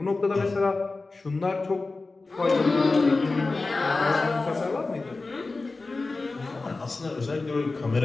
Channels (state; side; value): quieter; right; 3.6 dB